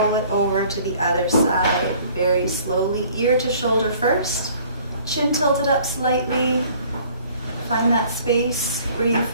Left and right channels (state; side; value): inverted; both; correlation -0.54